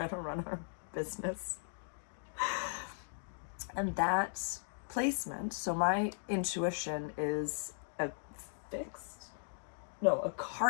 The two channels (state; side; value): silent; right; digital silence